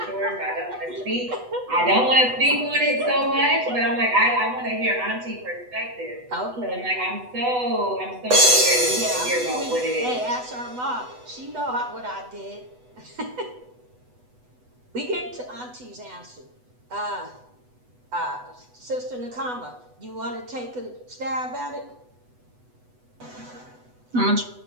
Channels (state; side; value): late; left; 8.1 ms